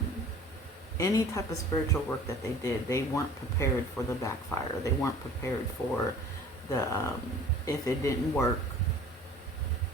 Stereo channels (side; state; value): both; normal; correlation 0.47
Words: any type of spiritual work that they did, they weren't prepared for the backfire. They weren't prepared for the, if it didn't work,